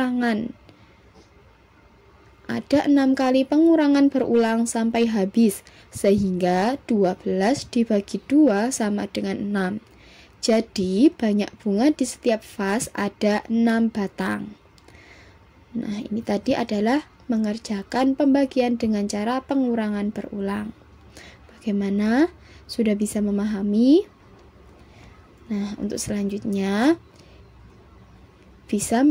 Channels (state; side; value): identical; both; correlation 1.00